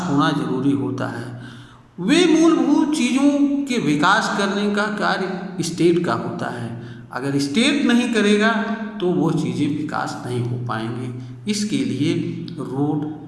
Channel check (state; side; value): identical; both; correlation 1.00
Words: होना जरूरी होता है। वे मूलभूत चीज़ों के विकास करने का कार्य स्टेट का होता है। अगर स्टेट नहीं करेगा तो वो चीज़ें विकास नहीं हो पाएंगे। इसके लिए रोड,